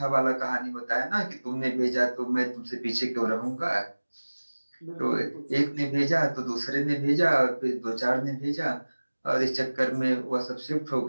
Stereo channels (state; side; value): inverted; both; correlation -1.00